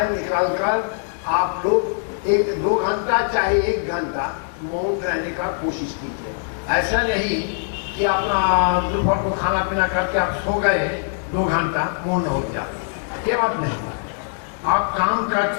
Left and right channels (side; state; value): right; silent; digital silence